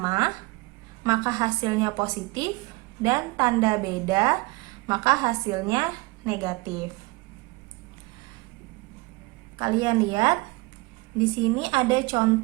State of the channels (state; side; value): quieter; left; 23.7 dB